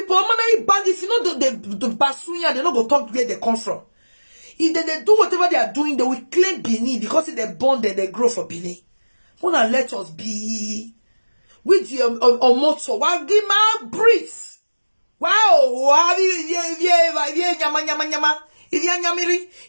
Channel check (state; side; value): inverted; both; correlation -1.00